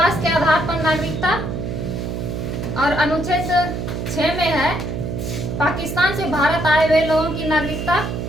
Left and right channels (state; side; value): noise; right; hum, 4 dB below the sound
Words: के आधार पर नागरिकता, और अनुच्छेद 6 में है पाकिस्तान से भारत आए हुए लोगों की नागरिकता,